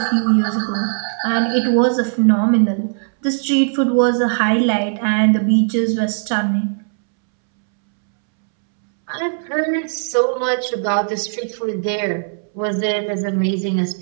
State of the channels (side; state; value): left; silent; 67 dB below the other